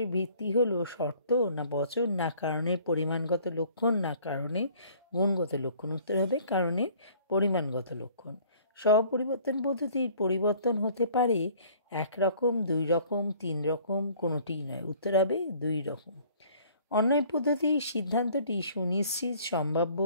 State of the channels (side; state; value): both; inverted; correlation -0.54